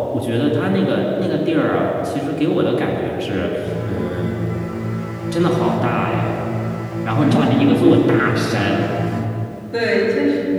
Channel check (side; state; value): both; identical; correlation 1.00